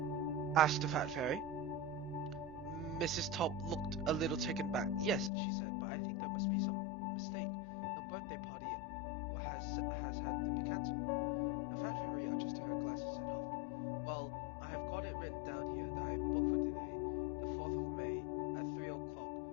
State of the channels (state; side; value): drops out; right; at 5.3 s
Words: asked the fat fairy. Mrs. Top looked a little taken back. "Yes," she said, "but I think there must be some mistake. The birthday party has had to be cancelled." The fat fairy adjusted her glasses and huffed. "Well, I have got it written down here that I am booked for today, the 4th of May, at 3 o'clock,